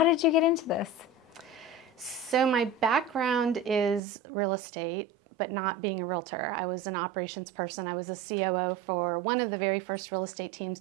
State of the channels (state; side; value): drops out; left; at 4.0 s